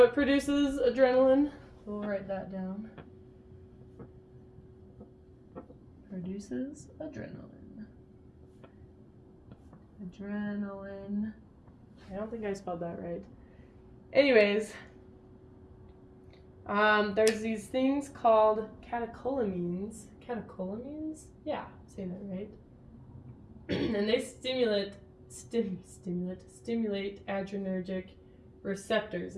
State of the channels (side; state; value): both; identical; correlation 1.00